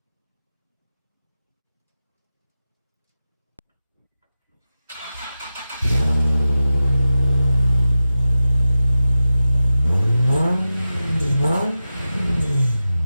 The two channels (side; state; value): both; inverted; correlation -0.93